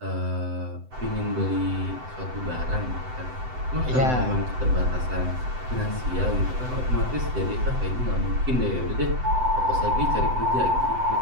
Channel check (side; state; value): left; late; 7.8 ms